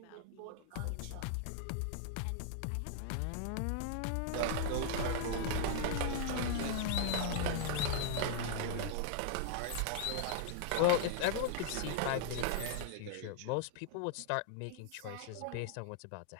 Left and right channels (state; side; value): different; both; correlation -0.01